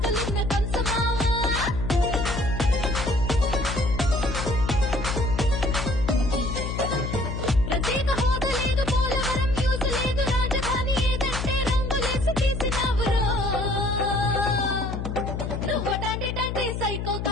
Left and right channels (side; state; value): left; noise; hum, 4 dB below the sound